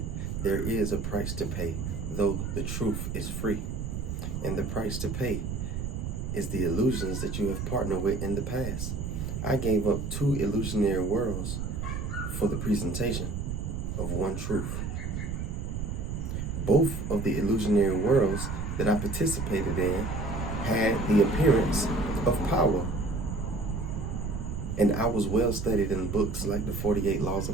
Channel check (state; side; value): noise; right; rumble, 3 dB below the sound